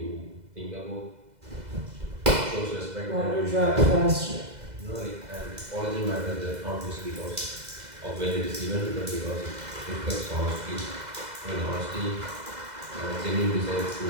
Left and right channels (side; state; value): left; late; 2.0 ms